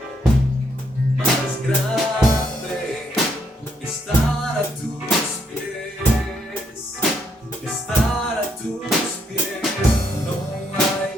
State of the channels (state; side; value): normal; both; correlation 0.74